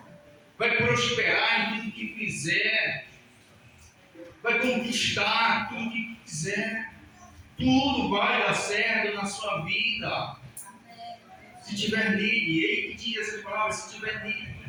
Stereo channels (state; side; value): identical; both; correlation 1.00